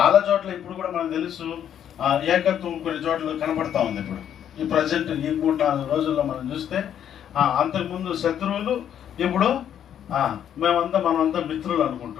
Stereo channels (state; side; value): quieter; right; 9.6 dB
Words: చోట్ల ఇప్పుడు కూడా మనకు తెలుసు ఏకత్వం కొన్ని చోట్ల కనపడతా ఉంది. ఇప్పుడు ఈ ప్రజెంట్ ఈ 3-4 రోజుల్లో మనం చూస్తే అంతకుముందు శత్రువులు, ఇప్పుడు మనమంతా మిత్రులు